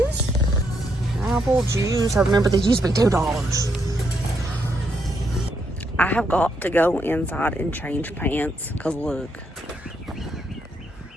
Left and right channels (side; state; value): both; normal; correlation 0.77